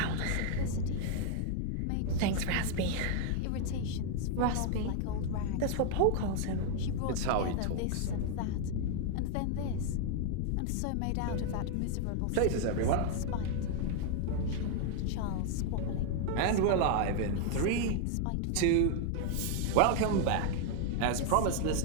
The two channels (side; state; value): both; different; correlation 0.00